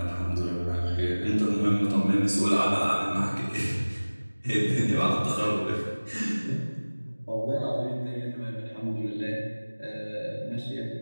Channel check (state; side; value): inverted; both; correlation -1.00